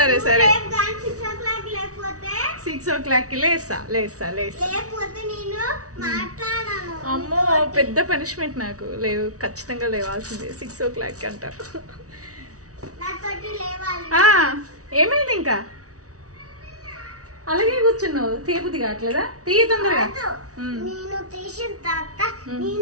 సరే 6 o'clock లేస్తా. అమ్మో, పెద్ద పనిష్మెంట్ నాకు. లేవు, ఖచ్చితంగా లేవాల్సిందే 6 o'clock అంట. ఏమైంది ఇంకా అలాగే కూర్చున్నావు? తీయబుద్ధి కావట్లేదా? తీయ తొందరగా.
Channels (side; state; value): left; late; 0.67 ms